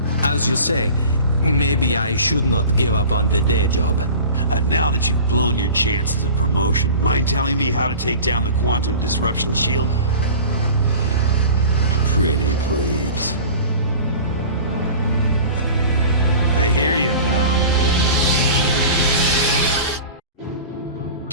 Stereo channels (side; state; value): both; inverted; correlation -0.39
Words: As you say, maybe I should not give up on the day job. Now that you've blown your chances of promotion, mind telling me how to take down the quantum disruption shield? Pretty please. I hear you, pal.